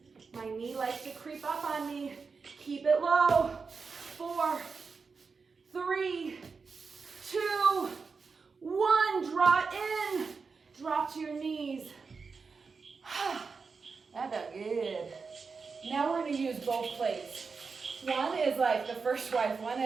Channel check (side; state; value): left; quieter; 4.9 dB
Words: My knee likes to creep up on me. Keep it low. 4, 3, 2, 1. Draw it in. Drop to your knees. That felt good. Now we're going to use both plates. One is like the first wife. One